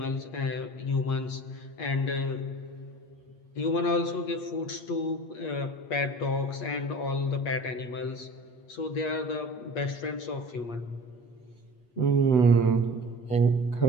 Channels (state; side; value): late; right; 8.4 ms